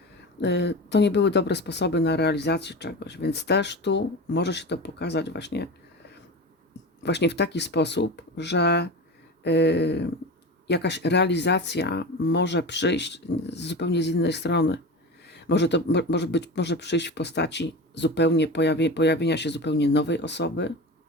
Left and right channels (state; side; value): normal; both; correlation 0.28